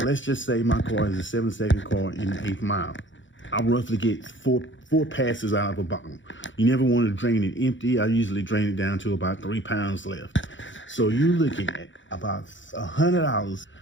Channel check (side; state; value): right; late; 0.55 ms